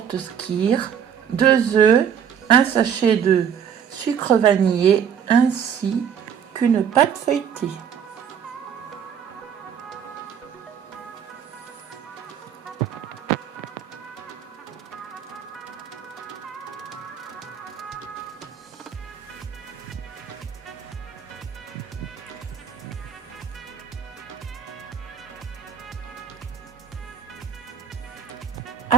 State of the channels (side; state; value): left; quieter; 8.2 dB